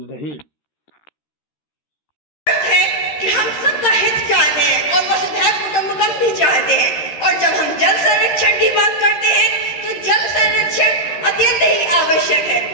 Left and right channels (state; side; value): late; right; 13 ms